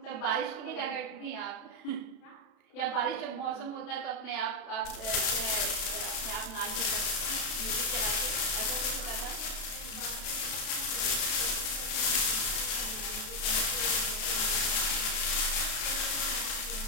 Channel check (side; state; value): right; late; 32 ms